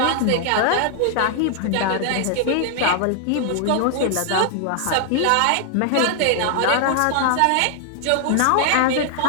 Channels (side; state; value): both; different; correlation 0.00